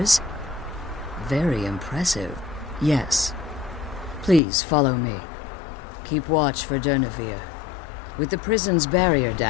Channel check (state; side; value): drops out; right; at 4.4 s